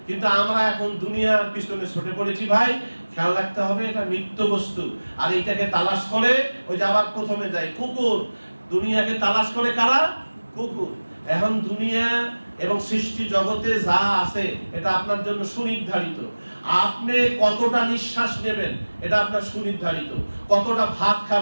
কিন্তু আমরা এখন দুনিয়ার পিছনে ছুটে পড়েছি ভাই। খেয়াল রাখতে হবে, এটা নিত্য বস্তু। আর এইটাকে তালাশ করে, ওই যে আবার প্রথমে যায় কুকুর, দুনিয়াকে তালাশ করে কারা? কুকুর। এখন দুনিয়া এবং সৃষ্টি জগতে যা আছে এটা আপনার জন্য সুনির্ধারিত। আপনি কতটা নিঃশ্বাস নেবেন এটা আপনার সুনির্ধারিত, কতটা ভাত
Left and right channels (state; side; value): inverted; both; correlation -1.00